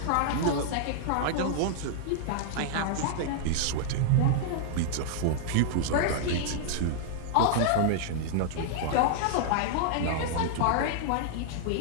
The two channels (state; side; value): different; both; correlation -0.01